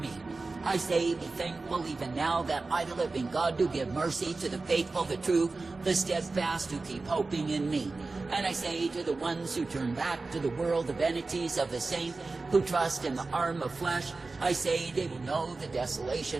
I say, be thankful even now that I, the living God, do give mercy to the faithful, the true, the steadfast, who keep hoping in me. And I say to the ones who turn back to the world, the vanities of the same, who trust in the arm of flesh, I say they will know the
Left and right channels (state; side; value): quieter; left; 3.7 dB